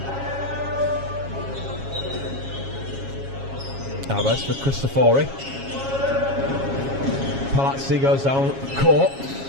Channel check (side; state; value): left; late; 7.3 ms